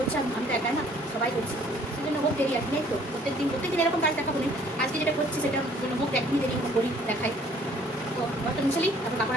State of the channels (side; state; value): both; normal; correlation 0.58